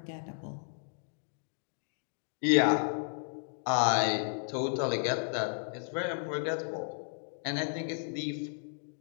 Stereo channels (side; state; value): right; silent; digital silence